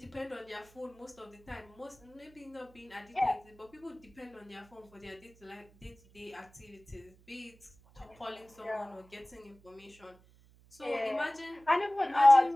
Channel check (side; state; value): right; noise; hum, 27 dB below the sound